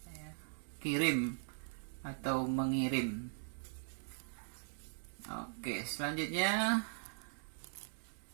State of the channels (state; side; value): silent; left; digital silence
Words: kirim atau mengirim. Oke, selanjutnya